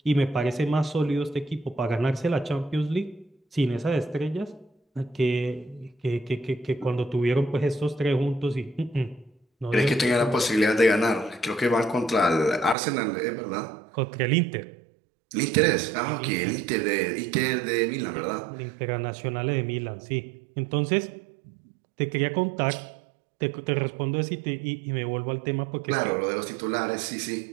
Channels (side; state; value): left; drops out; at 12.8 s